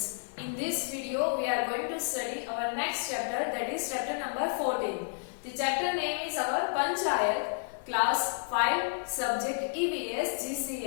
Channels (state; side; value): silent; right; 57 dB below the other